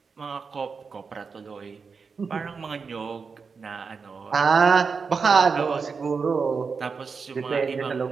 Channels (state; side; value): quieter; left; 5.2 dB